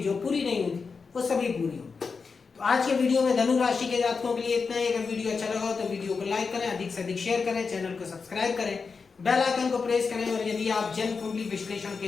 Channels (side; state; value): right; quieter; 5.0 dB